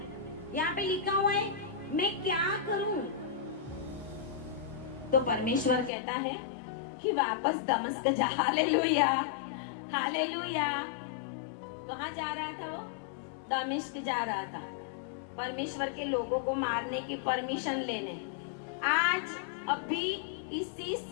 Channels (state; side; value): drops out; right; at 5.9 s